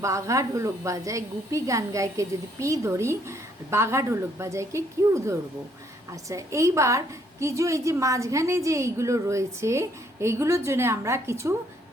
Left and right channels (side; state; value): both; normal; correlation 0.68